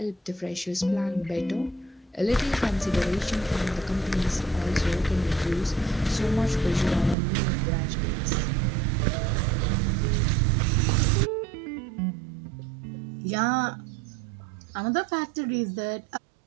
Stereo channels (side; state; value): left; drops out; at 7.2 s